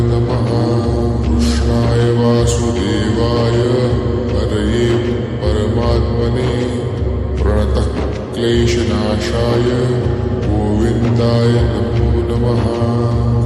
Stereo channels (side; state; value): both; identical; correlation 1.00